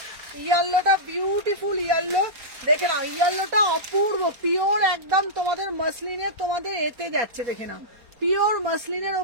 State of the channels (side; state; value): left; late; 4.3 ms